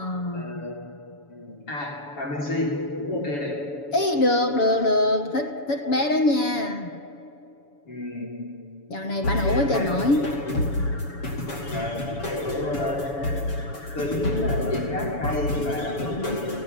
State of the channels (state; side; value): late; right; 7.0 ms